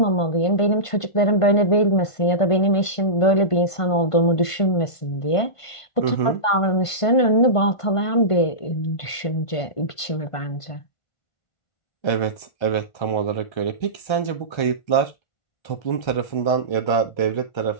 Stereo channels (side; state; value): right; late; 1.5 ms